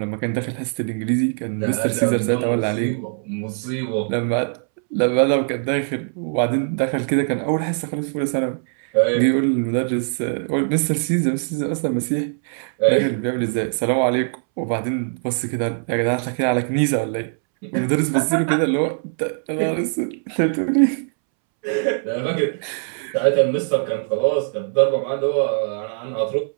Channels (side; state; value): left; silent; 65 dB below the other